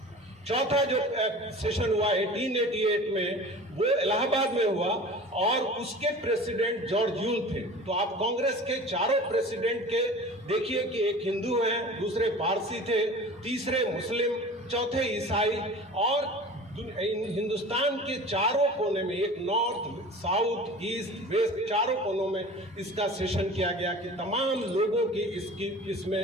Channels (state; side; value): normal; both; correlation 0.39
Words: चौथा जो सेशन हुआ 1888 में, वो इलाहाबाद में हुआ और उसके प्रेसिडेंट जॉर्ज यूल थे। तो आप कांग्रेस के चारों प्रेसिडेंट के देखिए कि एक हिंदू हैं, दूसरे पारसी थे, तीसरे मुस्लिम, चौथे ईसाई, और हिंदुस्तान के चारों कोने में, एक नॉर्थ, साउथ, ईस्ट, वेस्ट, चारों कोनों में इसका सेशन किया गया कि तमाम लोगों की